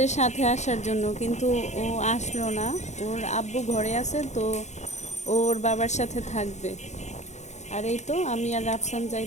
সাথে আসার জন্য, কিন্তু ও আসলো না। ওর আব্বু ঘরে আছে, তো ওর বাবার সাথে থাকবে। আর এই তো আমি আর রাফসান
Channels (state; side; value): late; right; 0.33 ms